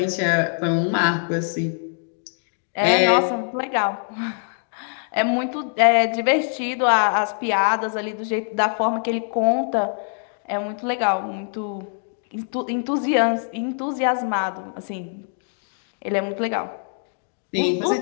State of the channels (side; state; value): right; silent; digital silence